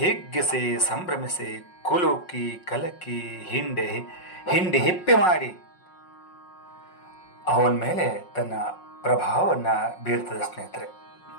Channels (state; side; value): late; right; 5.5 ms